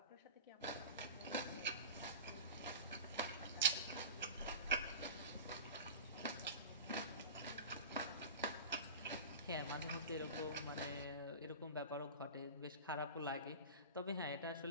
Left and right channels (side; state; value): both; inverted; correlation -0.31